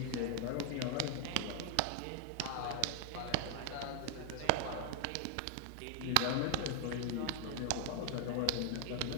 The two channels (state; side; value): different; both; correlation 0.00